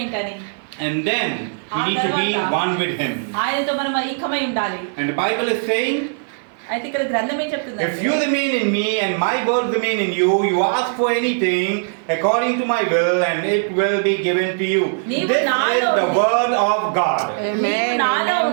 ఏంటని, And then we need to be one with him. ఆయనతో మనం ఐక్యమై ఉండాలి. And the Bible is saying, అయితే ఇక్కడ గ్రంథం ఏం చెప్తుంది? if you remain in me and my words remain in you, you ask for anything according to my will and it will be given to you. This is the word of God. నీవు నాలో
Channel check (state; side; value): silent; left; 57 dB below the other